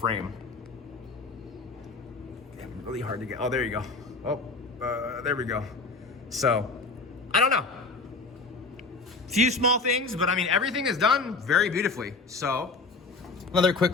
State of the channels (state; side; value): quieter; right; 3.8 dB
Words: Yeah, really hard to get. Oh, there you go. Oh, there we go. So, I don't know. Few small things, but I mean, everything is done very beautifully. So, another